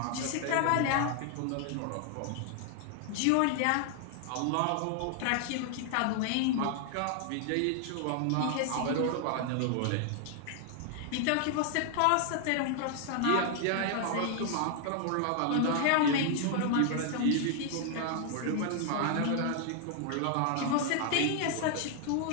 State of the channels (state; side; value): different; both; correlation 0.00